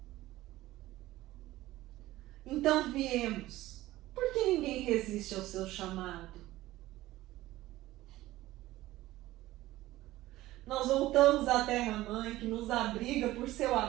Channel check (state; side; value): quieter; left; 16.5 dB